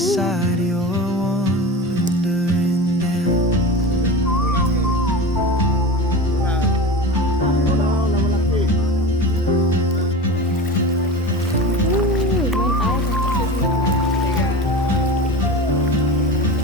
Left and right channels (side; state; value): both; normal; correlation 0.30